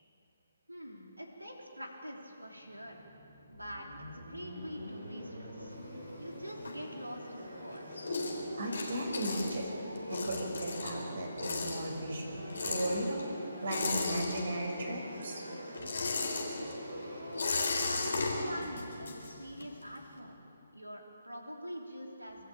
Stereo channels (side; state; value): both; inverted; correlation -0.82